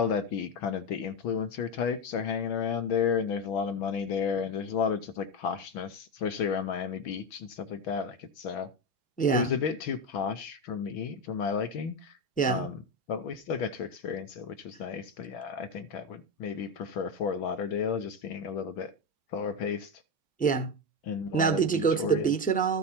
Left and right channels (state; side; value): normal; both; correlation 0.14